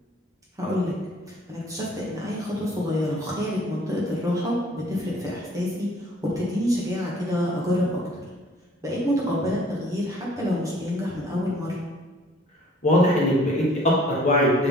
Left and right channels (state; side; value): normal; both; correlation 0.56